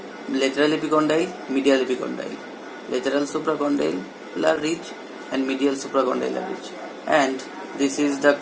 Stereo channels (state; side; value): identical; both; correlation 1.00